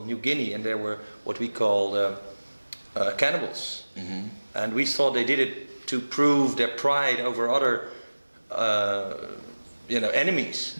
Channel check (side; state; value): both; inverted; correlation -1.00